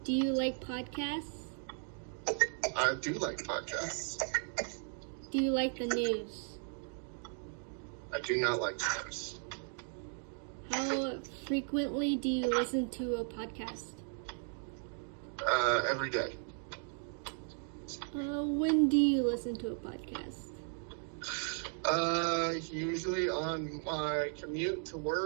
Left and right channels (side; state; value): left; silent; 54 dB below the other